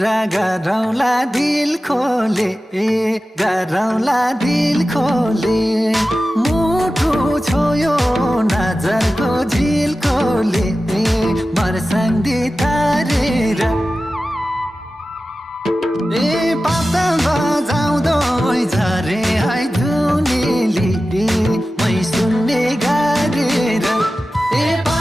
गरौँला दिल खोले गरौँला दिल खोले मुटु छोयो नजरको झिल खोले मर्सँदी तारेर पाता बजाउँदो झरे है धुनेली मै सुन्ने गारेर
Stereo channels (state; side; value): normal; both; correlation 0.95